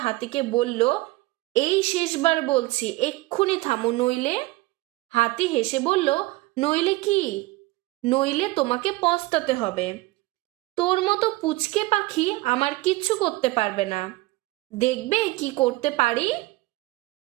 হাতিকে বলল, এই শেষবার বলছি, এক্ষুনি থামো, নইলে। হাতি হেসে বলল, নইলে কি? নইলে তোমাকে পস্তাতে হবে। তোর মতো পুচকে পাখি আমার কিচ্ছু করতে পারবে না। দেখবে কি করতে পারি।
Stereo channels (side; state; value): left; quieter; 20.4 dB